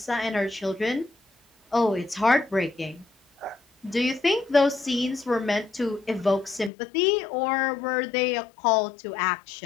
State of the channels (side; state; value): right; drops out; at 6.7 s